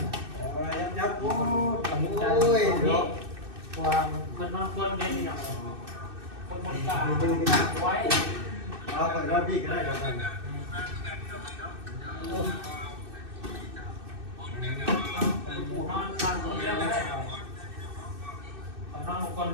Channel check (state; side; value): late; left; 2.6 ms